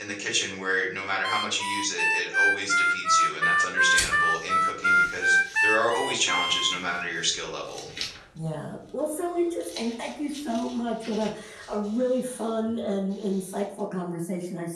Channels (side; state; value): both; identical; correlation 1.00